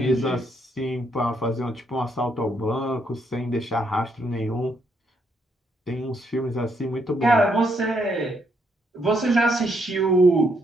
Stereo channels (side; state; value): both; normal; correlation 0.74